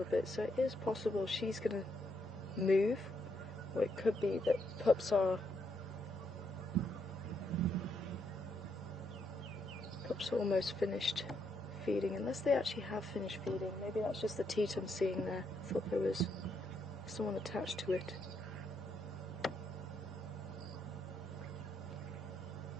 bit, so it is possible she's going to move, or it could be that pups are almost finished feeding, unless they actually have finished feeding. Maybe that's just the teat I'm seeing there. I thought there was someone attached to it.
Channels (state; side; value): normal; both; correlation 0.77